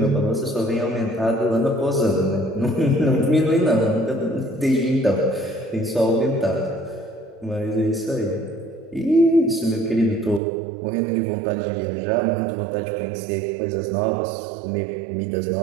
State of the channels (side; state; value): left; drops out; at 10.4 s